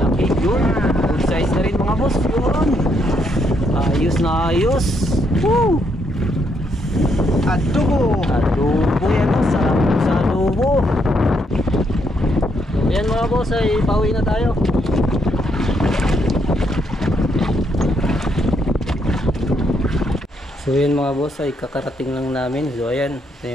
Yun, good size na rin mga boss. Yun, ayos na ayos. Woo! Adobo Yan o, sarap sa adobo. So yan mga boss, ay pauwi na tayo. So yan mga boss, ay kakarating lang namin. So ayan, ito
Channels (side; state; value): both; normal; correlation 0.75